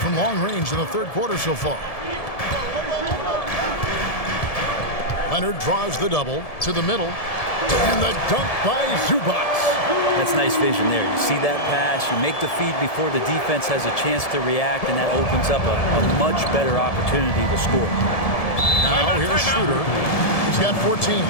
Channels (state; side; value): late; right; 1.7 ms